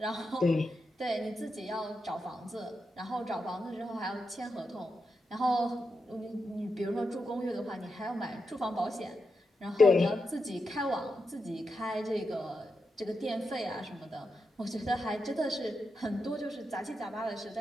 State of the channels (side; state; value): both; normal; correlation 0.87